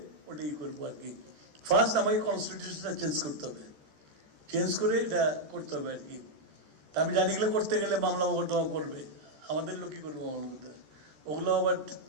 ওটাই করবো আর কি। ফার্স্ট আমাকে কনস্টিটিউশনটা চেঞ্জ করতে হবে, চেঞ্জ করে এটা করতে হবে আর কি। তা আমি জানি এগুলো করতে গেলে মামলা মোকদ্দমা করবে, আমাদের লোক কি করবো মামলা করতে, ওগুলো আবার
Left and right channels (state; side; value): late; left; 14 ms